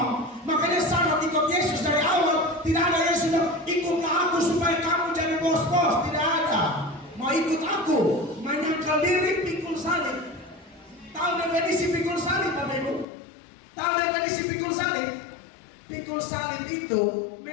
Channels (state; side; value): drops out; right; at 13.1 s